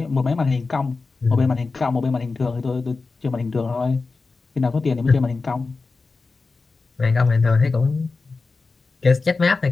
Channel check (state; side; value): quieter; right; 4.0 dB